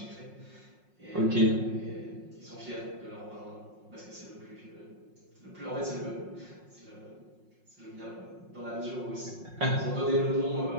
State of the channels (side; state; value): left; late; 5.5 ms